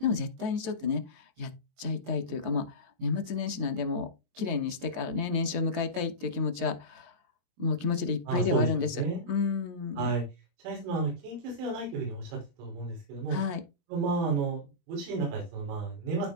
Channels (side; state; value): left; late; 22 ms